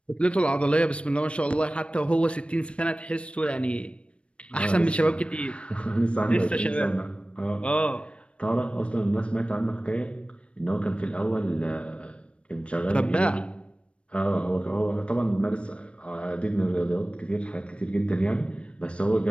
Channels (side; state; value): right; late; 0.059 ms